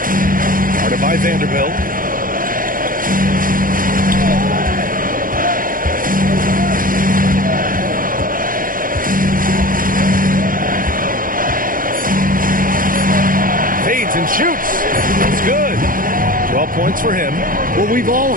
Guarded by Vanderbilt. Fades and shoots. It's good. 12 points for him. Well, we've all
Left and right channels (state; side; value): late; left; 0.40 ms